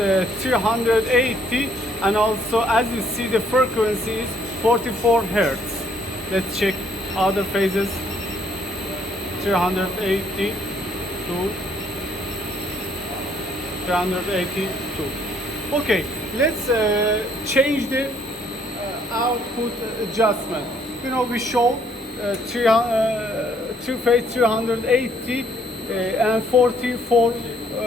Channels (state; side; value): normal; both; correlation 0.66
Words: 380, and also as you see the frequency is 44 hertz. Let's check other phases. 380 to 382. Okay, let's change the output adjustment. You know, we show three phase 380 and 44